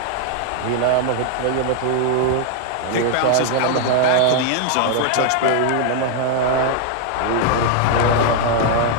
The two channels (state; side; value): different; both; correlation 0.00